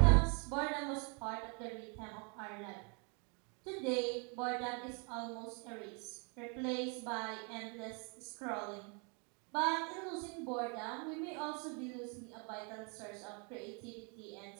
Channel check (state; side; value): quieter; left; 35.7 dB